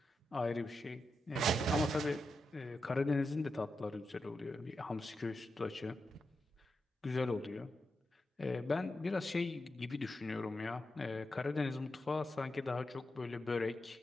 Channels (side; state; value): both; normal; correlation 0.88